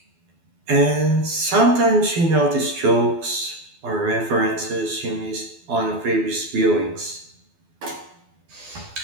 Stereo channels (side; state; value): left; late; 12 ms